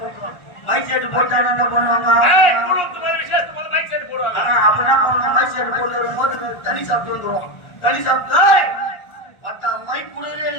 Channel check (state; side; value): late; right; 1.3 ms